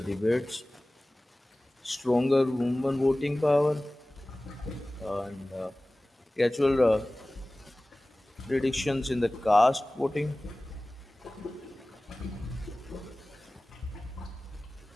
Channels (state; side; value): normal; both; correlation 0.98